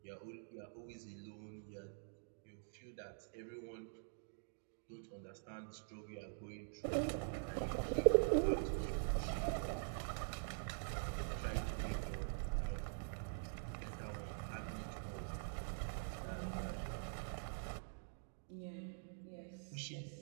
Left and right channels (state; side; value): silent; left; digital silence